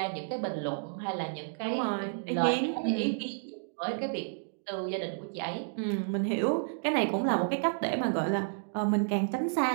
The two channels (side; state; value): left; silent; digital silence